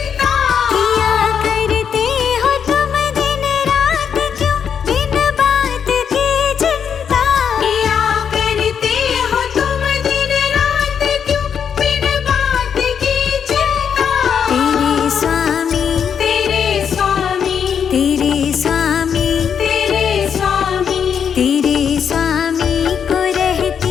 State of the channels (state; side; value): quieter; right; 7.5 dB